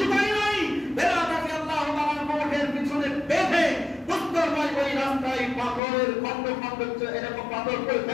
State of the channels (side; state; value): right; drops out; at 5.8 s